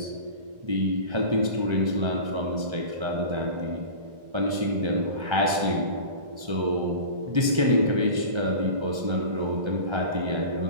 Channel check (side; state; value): left; late; 1.3 ms